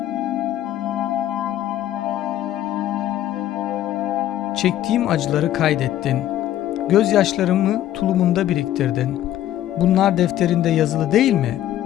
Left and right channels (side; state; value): right; quieter; 12.6 dB